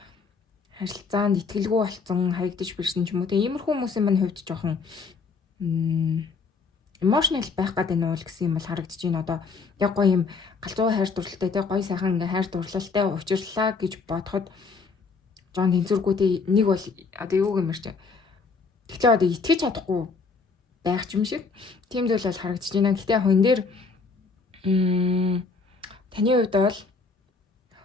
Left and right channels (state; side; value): quieter; right; 4.6 dB